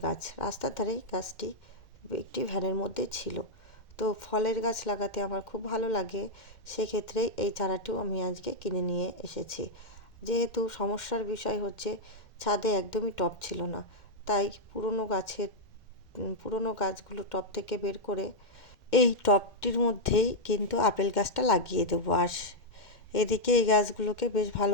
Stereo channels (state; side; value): late; right; 2.1 ms